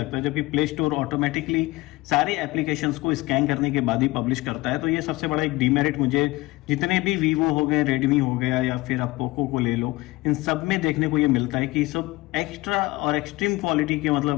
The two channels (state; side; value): quieter; right; 21.0 dB